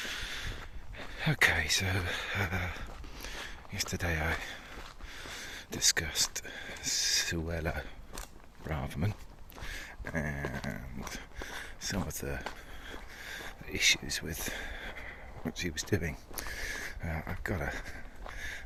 Okay, so yesterday I discussed Suella Braverman and some of the issues with what she was doing. I've got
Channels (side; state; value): both; identical; correlation 1.00